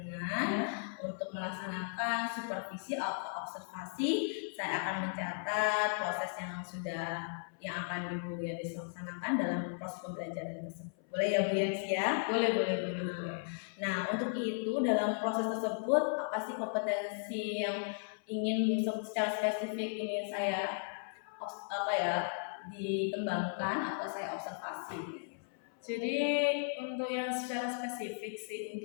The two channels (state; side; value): silent; right; 54 dB below the other